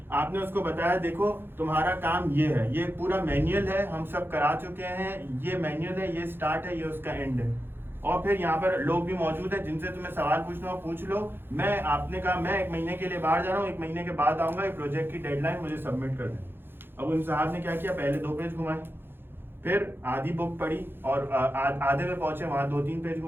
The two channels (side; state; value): left; late; 0.10 ms